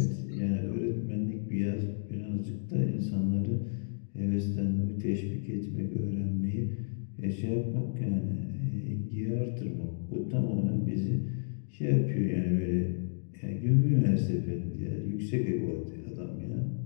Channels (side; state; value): right; silent; digital silence